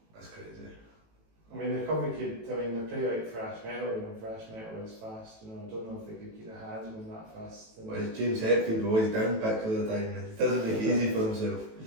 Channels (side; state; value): left; late; 18 ms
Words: That's crazy. I mean, they probably could, they play like thrash metal, you know, thrash metal is fast, you know, I don't know if they could keep their hands going that fast. Well, it's James Hetfield always downpicked all the time, and he doesn't make it easy for himself.